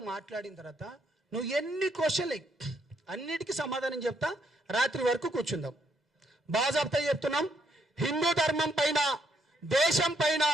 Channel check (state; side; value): normal; both; correlation 0.73